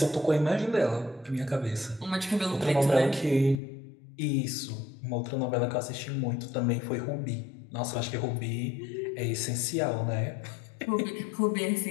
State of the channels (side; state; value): right; drops out; at 3.6 s